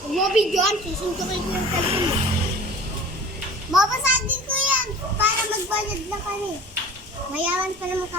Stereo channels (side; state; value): both; normal; correlation 0.42